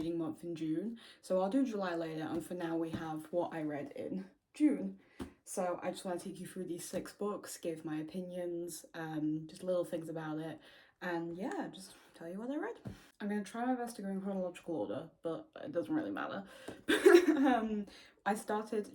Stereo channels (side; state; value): both; identical; correlation 1.00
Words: month in June. So I'll do July later, and for now we have what I read in June. So I just want to take you through these 6 books, give my opinions, just little things about it, and yeah, just tell you what I read. I'm going to try my best to go in chronological order, but it doesn't really matter. I